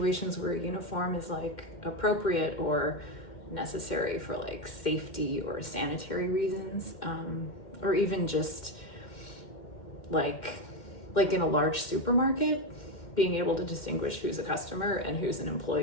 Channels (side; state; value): right; late; 2.1 ms